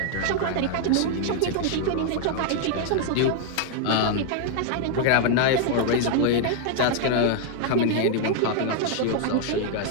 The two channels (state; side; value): different; both; correlation 0.00